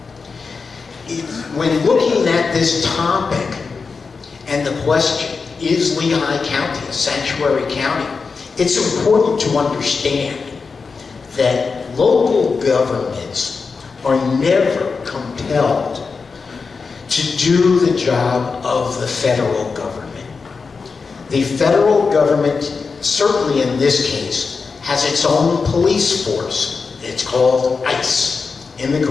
When looking at this topic and the question, is Lehigh County a sanctuary county? It's important to understand that local governments are never compelled to do the job of the federal government. The federal government, certainly in this case, has its own police force. It's called ICE,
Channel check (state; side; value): quieter; right; 4.8 dB